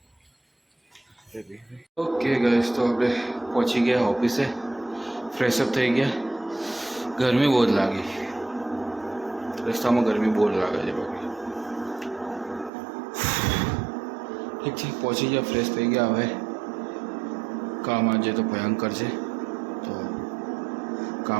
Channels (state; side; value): drops out; left; at 12.7 s